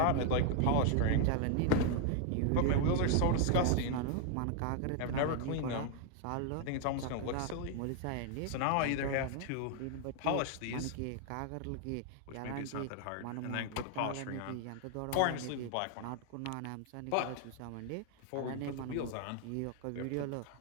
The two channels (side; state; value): both; different; correlation 0.00